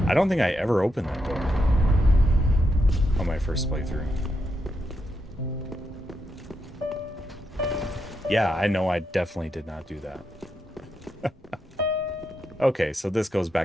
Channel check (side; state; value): both; normal; correlation 0.83